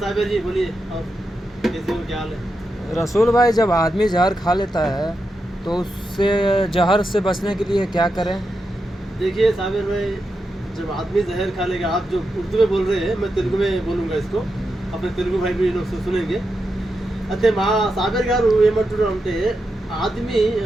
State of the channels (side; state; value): both; normal; correlation 0.87